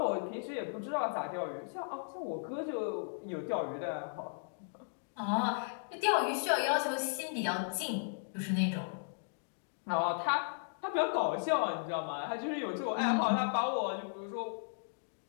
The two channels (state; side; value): silent; right; digital silence